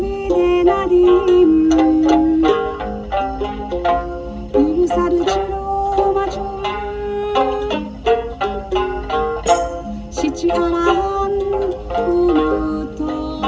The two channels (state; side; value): identical; both; correlation 1.00